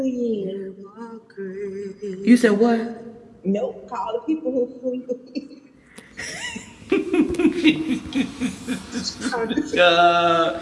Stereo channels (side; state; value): both; identical; correlation 1.00